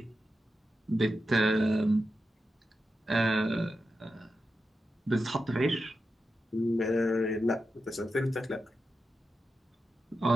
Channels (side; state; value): both; normal; correlation 0.89